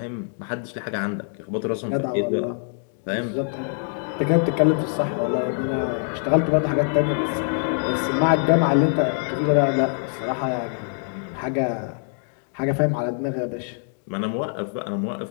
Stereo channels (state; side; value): silent; right; 63 dB below the other